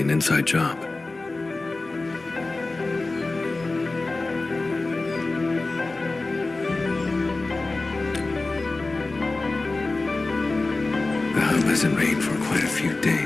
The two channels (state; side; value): quieter; right; 3.3 dB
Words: inside job. The hub hasn't rained for quite a few